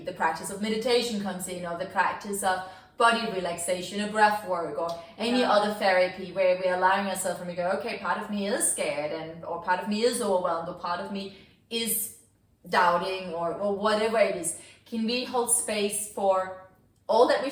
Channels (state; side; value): identical; both; correlation 1.00